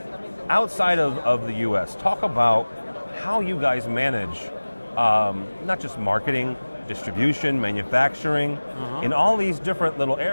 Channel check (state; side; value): inverted; both; correlation -1.00